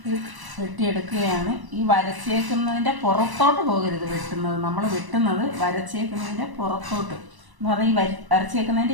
ഇത് വെട്ടിയെടുക്കുകയാണ്. ഈ വരച്ചേക്കുന്നതിൻ്റെ പുറത്തോട്ട് പോകരുത് വെട്ടുന്നത്. നമ്മൾ വെട്ടുന്നത് വരച്ചേക്കുന്നതിൻ്റെ പുറത്തോട്ട് എന്ന് പറഞ്ഞാൽ ഈ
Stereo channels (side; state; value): left; late; 1.0 ms